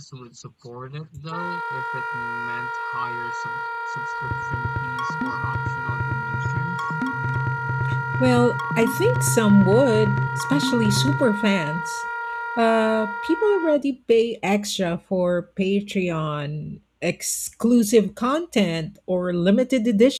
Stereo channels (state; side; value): identical; both; correlation 1.00